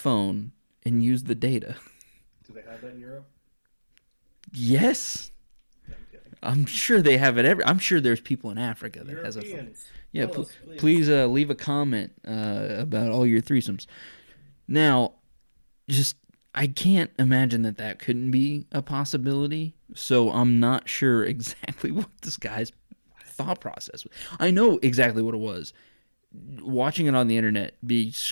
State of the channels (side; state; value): both; inverted; correlation -1.00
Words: and use the data. Do they have that in Europe? Yes. Yeah, I'm kidding. I'm sure they have it I'm sure there's people in Africa that has a phone. Europeans. Yeah, Tell us, please leave a comment about all your threesomes. Now, I can't imagine that couldn't be a possibility, so I'm not sure exactly what this guy's thought process was. I know exactly what it was. Watching it on the internet be